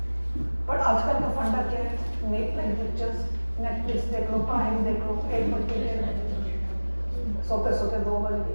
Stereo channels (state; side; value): inverted; both; correlation -1.00